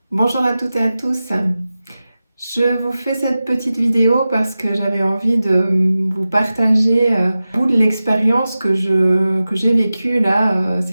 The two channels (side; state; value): both; inverted; correlation -0.95